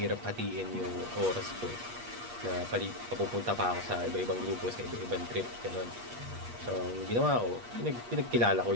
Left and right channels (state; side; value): late; left; 8.4 ms